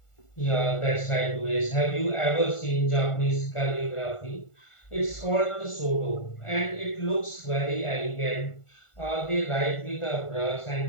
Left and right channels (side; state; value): right; late; 1.4 ms